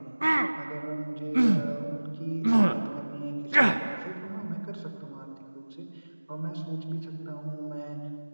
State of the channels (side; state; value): both; inverted; correlation -1.00